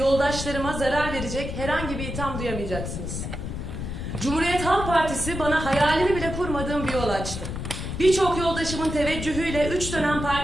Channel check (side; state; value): left; noise; rumble, 6 dB below the sound